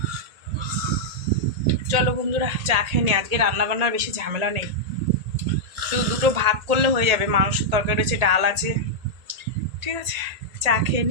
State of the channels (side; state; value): left; late; 1.8 ms